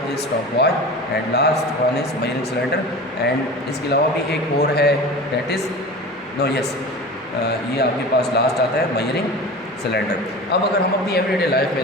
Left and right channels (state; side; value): normal; both; correlation 0.34